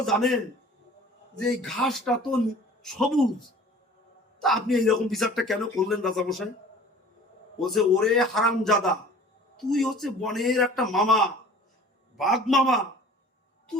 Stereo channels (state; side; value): normal; both; correlation 0.46